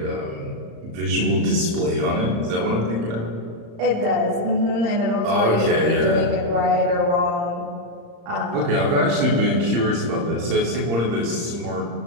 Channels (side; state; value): left; late; 35 ms